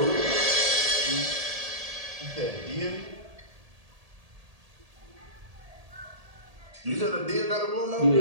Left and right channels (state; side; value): late; left; 1.8 ms